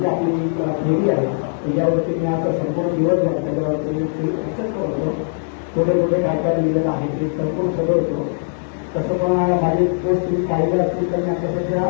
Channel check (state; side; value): silent; right; digital silence